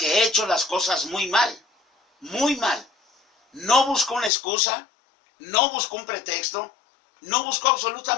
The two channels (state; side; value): drops out; right; at 4.3 s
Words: he hecho las cosas muy mal. Muy mal. No buscó una excusa, no buscó un pretexto, no buscó